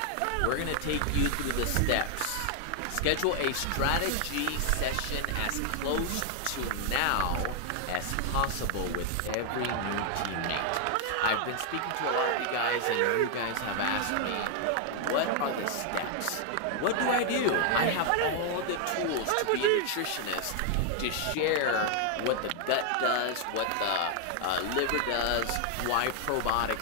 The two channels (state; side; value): different; both; correlation 0.00